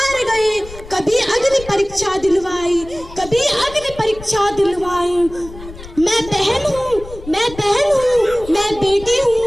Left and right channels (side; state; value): left; noise; rumble, 16 dB below the sound